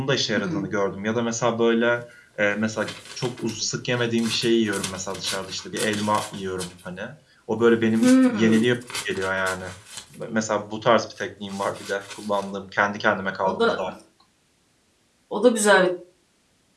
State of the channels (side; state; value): both; identical; correlation 1.00